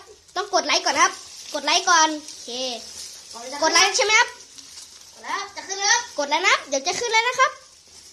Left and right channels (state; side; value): identical; both; correlation 1.00